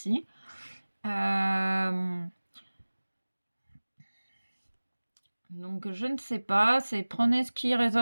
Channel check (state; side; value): inverted; both; correlation -1.00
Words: Donc je ne sais pas, c'est prenez ce qui